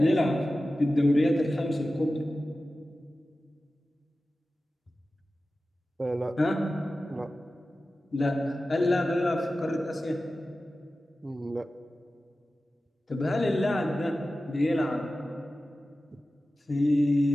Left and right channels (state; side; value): normal; both; correlation 0.95